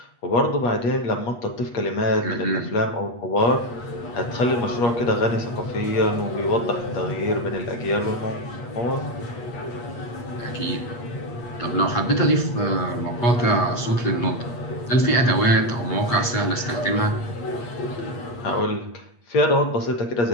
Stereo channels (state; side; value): late; right; 8.4 ms